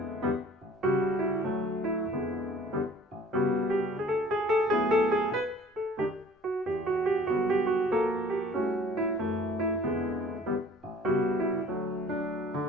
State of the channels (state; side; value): normal; both; correlation 0.51